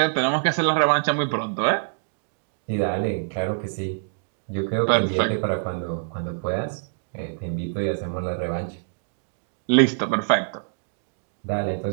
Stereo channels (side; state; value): left; silent; digital silence